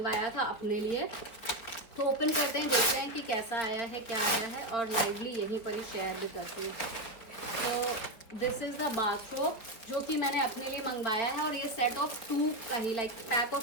था अपने लिए, तो ओपन करते हैं, देखते हैं कि कैसा आया है, क्या आया है, और लाइवली यहीं पर ही शेयर भी करती हूँ। तो दिस इज़ द बाथरोब जो कि मैंने अपने लिए मंगवाया है और ये सेट ऑफ 2 का ही, लाइक पैक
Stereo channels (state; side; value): late; right; 4.6 ms